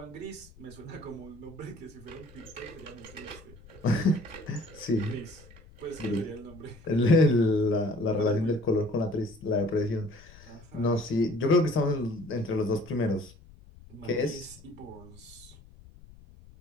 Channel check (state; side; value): noise; left; rumble, 22 dB below the sound